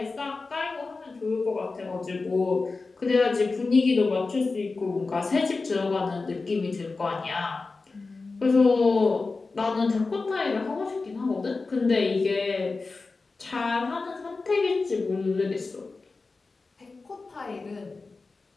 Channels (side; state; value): right; quieter; 3.9 dB